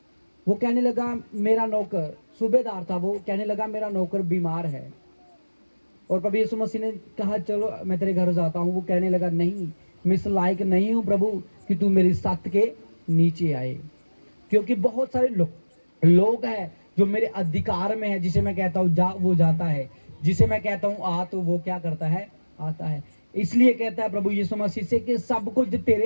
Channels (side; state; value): both; inverted; correlation -1.00